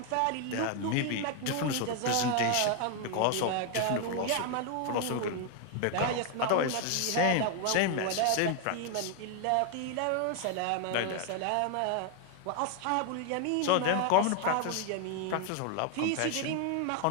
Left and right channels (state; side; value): different; both; correlation 0.00